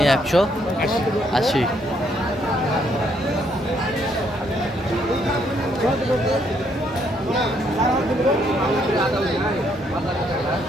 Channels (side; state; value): both; normal; correlation 0.71